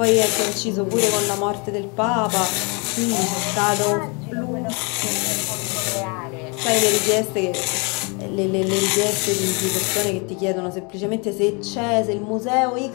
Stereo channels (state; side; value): quieter; right; 32.5 dB